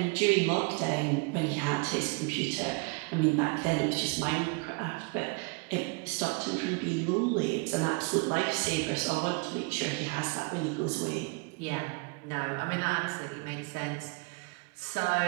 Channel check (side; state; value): left; quieter; 31.4 dB